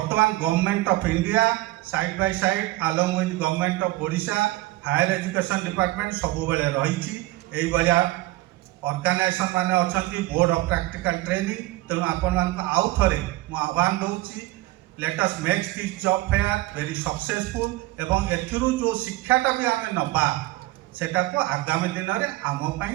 government of India side by side along with government of Odisha higher education department सब बेले रही ऑर्गेनाइजेशन माने अच्छी बोर्ड ऑफ प्रैक्टिकल ट्रेनिंग तेणु आपण आउ थे मु आह्वान दूसरी let us make this job fair very successful एवं एथिरु जो शिक्षाटा भी आम नबा सेटा को आगामी दिन में आम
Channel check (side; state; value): left; quieter; 18.5 dB